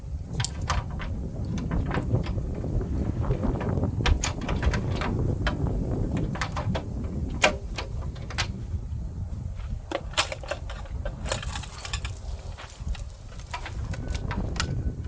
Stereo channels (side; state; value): both; identical; correlation 1.00